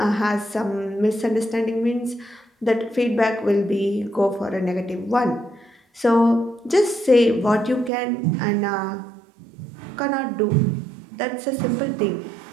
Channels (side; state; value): left; drops out; at 7.9 s